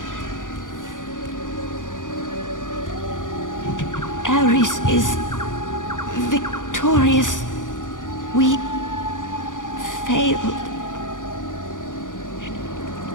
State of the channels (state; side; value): late; right; 0.88 ms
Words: Ares is victorious. We failed.